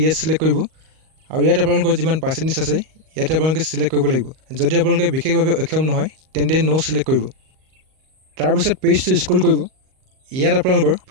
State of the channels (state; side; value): late; left; 38 ms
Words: চিলেক্ট কৰিব আৰু ইয়াত আপোনালোকৰ যিমান পাৰ্চেণ্টেজ আছে ইয়াতে আপোনালোকে চিলেক্ট কৰিব লাগিব যদি আপোনালোকে বিশেষভাৱে অক্ষম নহয় তেন্তে নো চিলেক্ট কৰিব তাৰপিছত পেজটো স্ক্ৰল কৰিব ইয়াত আপোনালোকৰ